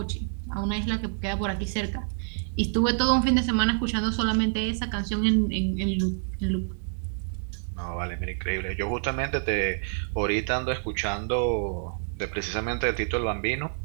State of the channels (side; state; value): left; silent; digital silence